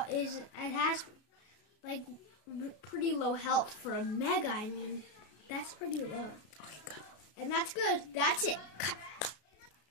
like pretty low health for a Mega. I mean, that's pretty low. Okay, good. And that's good. That's it.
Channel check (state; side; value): late; right; 33 ms